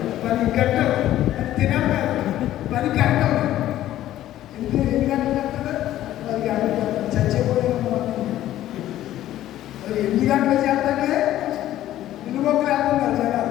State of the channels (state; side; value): quieter; right; 13.4 dB